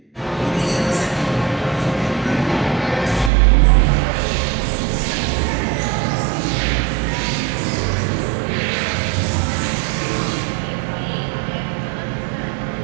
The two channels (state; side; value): drops out; left; at 3.3 s